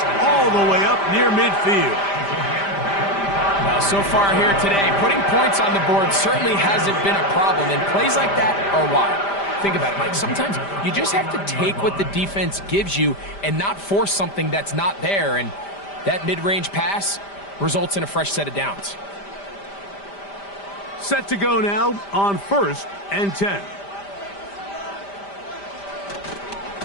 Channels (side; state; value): right; late; 5.0 ms